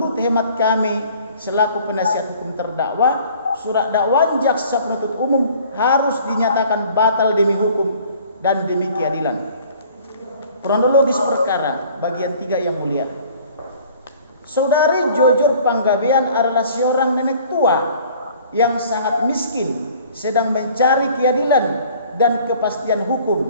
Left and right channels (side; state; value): both; inverted; correlation -0.52